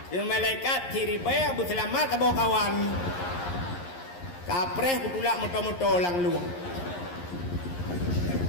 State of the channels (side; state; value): right; late; 11 ms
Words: Malaikat tiribaya berselamat ke kawan. Kapreh kutulak moto-moto lang luang.